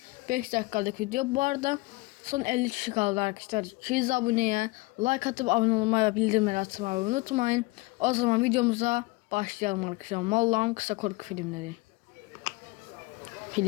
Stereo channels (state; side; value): quieter; right; 23.0 dB